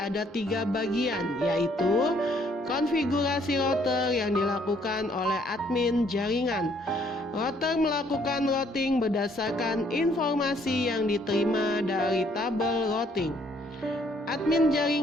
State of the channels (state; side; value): normal; both; correlation 0.65